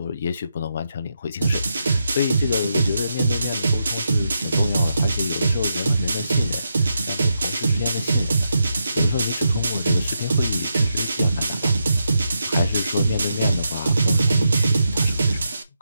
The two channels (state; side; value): inverted; both; correlation -0.84